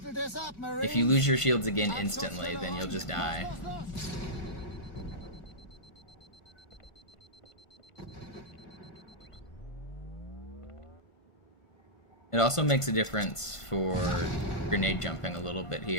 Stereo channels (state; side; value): late; right; 1.5 ms